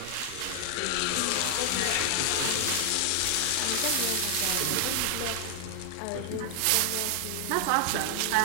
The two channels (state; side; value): different; both; correlation 0.00